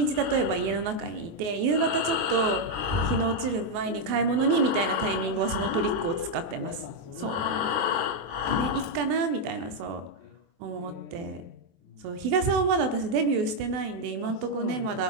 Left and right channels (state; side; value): late; left; 24 ms